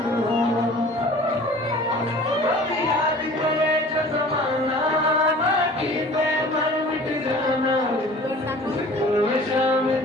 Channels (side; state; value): both; normal; correlation 0.45